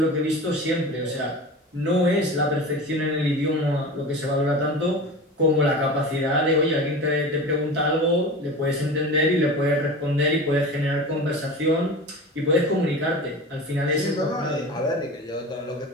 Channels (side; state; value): both; normal; correlation 0.32